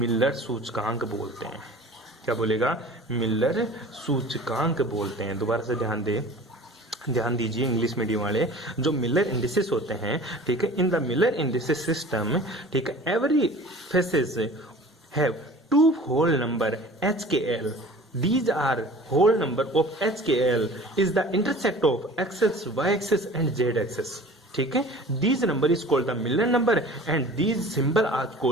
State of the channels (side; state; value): both; normal; correlation 0.43